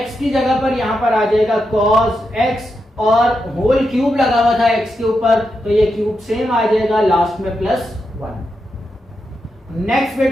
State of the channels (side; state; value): both; normal; correlation 0.86